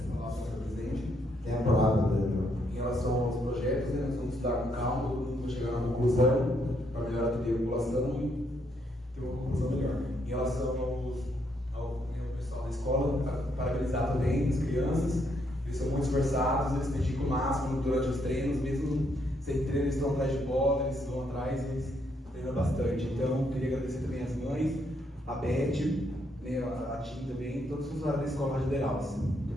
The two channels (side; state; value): both; normal; correlation 0.74